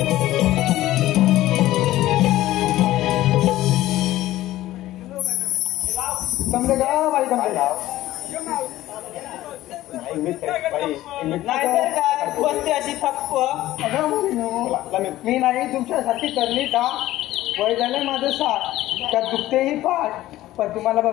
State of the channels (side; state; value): right; quieter; 15.4 dB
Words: समजे का बाई समजे नाहीतर काय बसते अशी थप्प. मी नाही तुमच्यासाठी करली का? वय झालं माझं साथ, त्यात दुखतेही पाठ, पण तुम्हाला